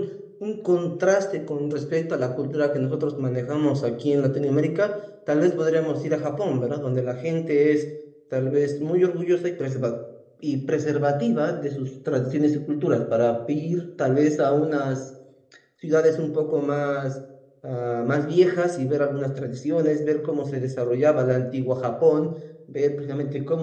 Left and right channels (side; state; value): both; identical; correlation 1.00